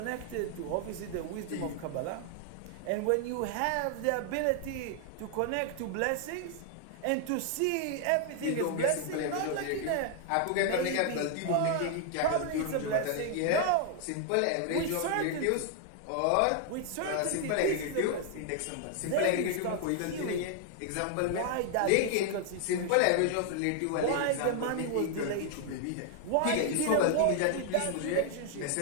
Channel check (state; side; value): different; both; correlation 0.00